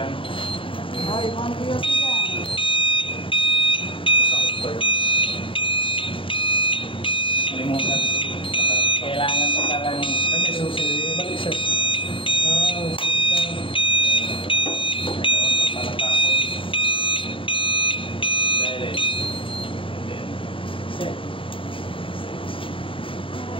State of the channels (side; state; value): right; late; 0.25 ms